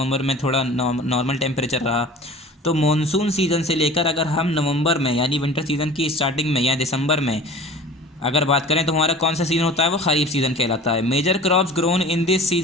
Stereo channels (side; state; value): both; normal; correlation 0.41